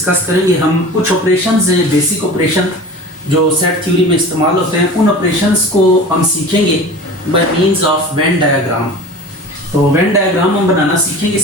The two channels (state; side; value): normal; both; correlation 0.37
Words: करेंगे। हम कुछ ऑपरेशंस हैं, बेसिक ऑपरेशन जो सेट थ्योरी में इस्तेमाल होते हैं, उन ऑपरेशंस को हम सीखेंगे by means of Venn diagram. तो वेन डायग्राम हम बनाना सीखेंगे।